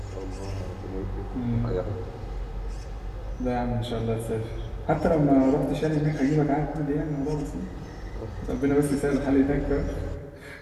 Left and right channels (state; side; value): identical; both; correlation 1.00